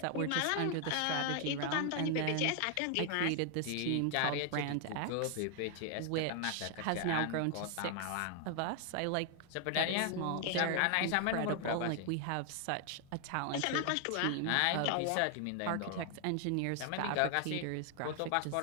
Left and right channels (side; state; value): both; different; correlation 0.00